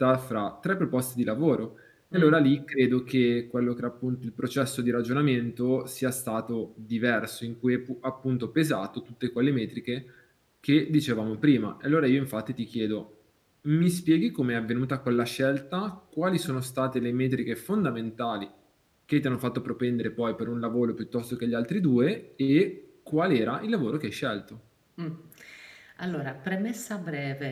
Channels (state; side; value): identical; both; correlation 1.00